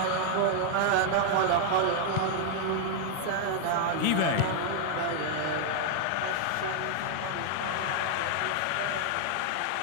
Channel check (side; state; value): both; different; correlation 0.00